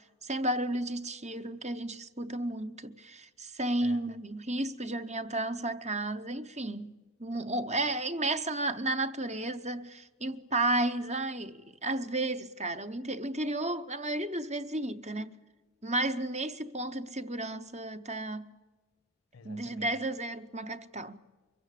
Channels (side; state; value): both; normal; correlation 0.22